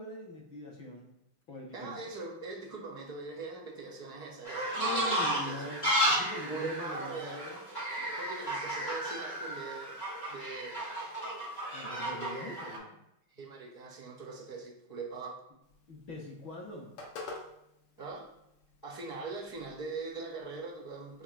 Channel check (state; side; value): late; right; 5.3 ms